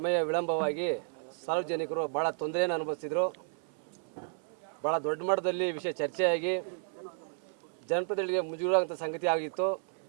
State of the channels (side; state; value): left; silent; 56 dB below the other